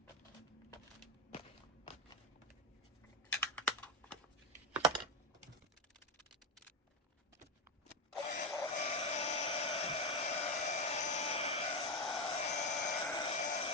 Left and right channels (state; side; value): normal; both; correlation 0.11